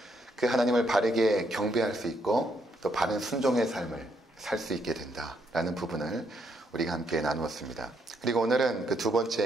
그 하나님을 바르게 경배할 수 있고 또 바른 순종의 삶을 살 수 있게 된다라는 부분을 우리가 함께 나누었습니다. 그리고 오늘은 그 두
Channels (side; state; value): both; normal; correlation 0.75